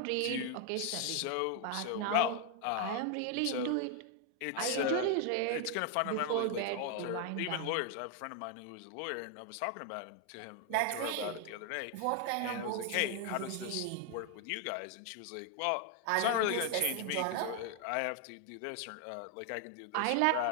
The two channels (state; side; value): different; both; correlation 0.01